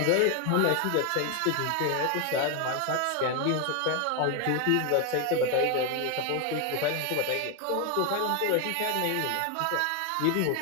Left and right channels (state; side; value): different; both; correlation 0.01